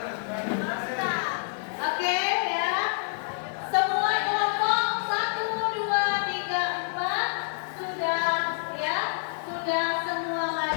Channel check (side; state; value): right; silent; 60 dB below the other